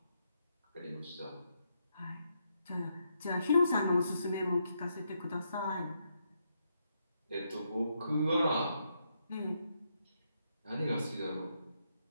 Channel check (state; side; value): inverted; both; correlation -0.79